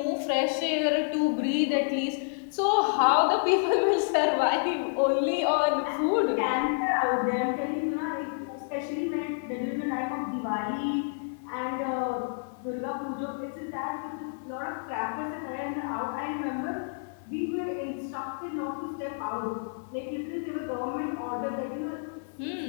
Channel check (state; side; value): silent; right; digital silence